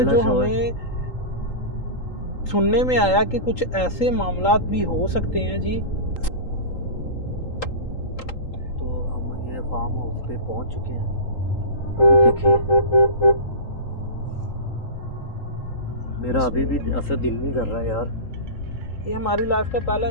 जो हमें सुनने में आया कि कुछ ऐसे मामलात भी हो सकते हैं जी। तो हम ये फार्म हाउस पे पहुंच चुके हैं। देखिए मेरा अभी भी असर दिल नहीं कर रहा है यार। ये हमारी लाइफ का पहला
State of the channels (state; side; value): late; right; 3.8 ms